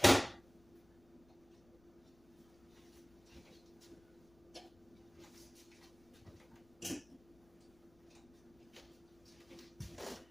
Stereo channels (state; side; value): noise; left; rumble, 29 dB below the sound